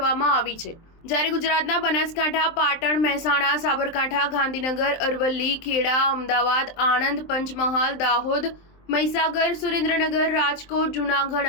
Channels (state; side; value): late; right; 23 ms